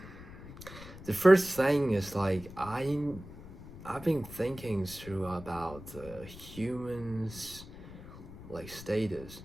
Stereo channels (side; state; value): left; noise; rumble, 15 dB below the sound